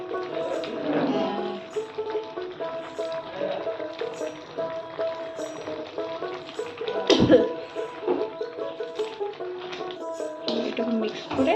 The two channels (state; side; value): identical; both; correlation 1.00